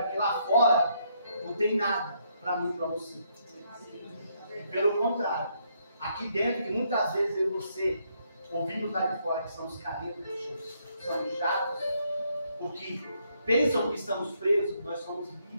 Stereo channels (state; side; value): inverted; both; correlation -0.73